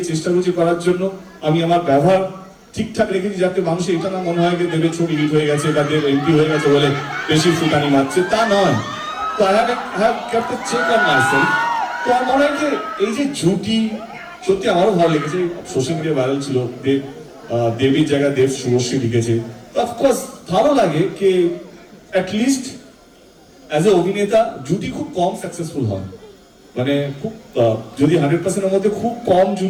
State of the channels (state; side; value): identical; both; correlation 1.00